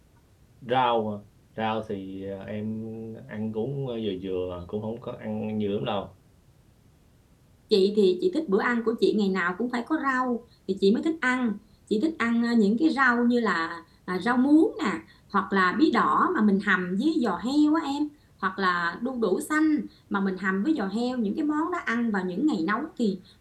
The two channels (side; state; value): both; identical; correlation 1.00